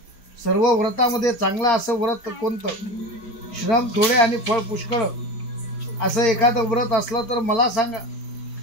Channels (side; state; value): right; late; 4.6 ms